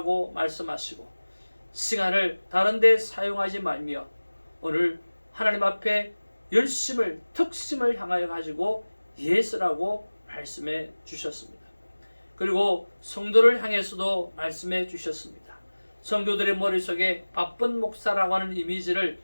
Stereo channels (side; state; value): both; inverted; correlation -1.00